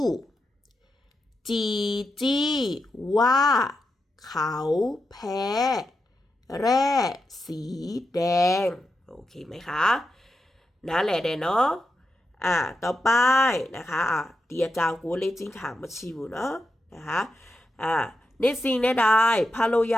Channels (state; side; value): normal; both; correlation 0.86